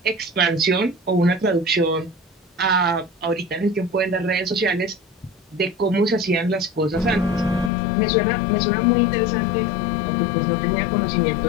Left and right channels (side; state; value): right; drops out; at 7.7 s